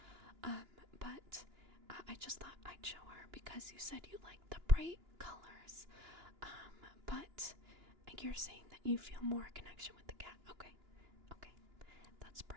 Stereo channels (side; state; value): left; late; 2.9 ms